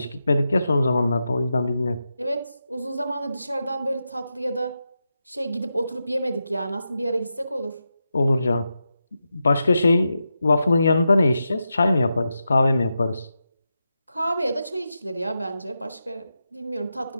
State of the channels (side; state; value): both; inverted; correlation -0.88